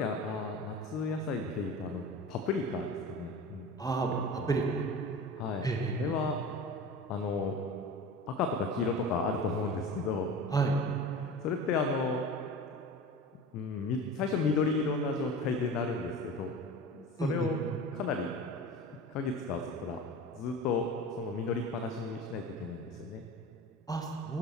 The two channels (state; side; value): normal; both; correlation 0.34